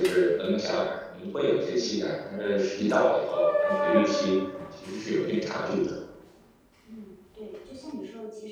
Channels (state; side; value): identical; both; correlation 1.00